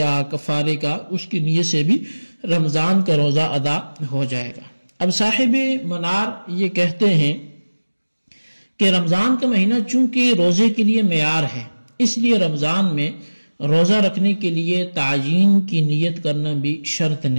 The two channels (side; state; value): both; inverted; correlation -1.00